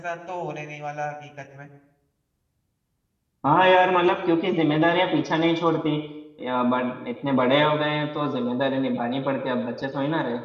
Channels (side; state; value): both; identical; correlation 1.00